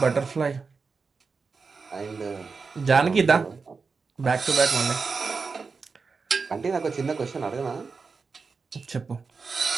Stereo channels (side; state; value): left; quieter; 4.8 dB